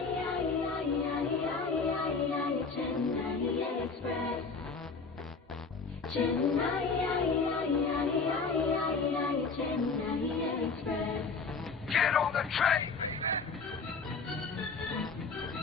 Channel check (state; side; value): quieter; right; 4.6 dB